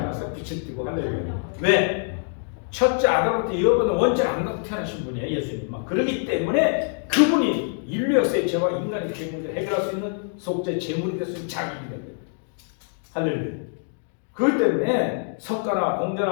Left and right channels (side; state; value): right; silent; 56 dB below the other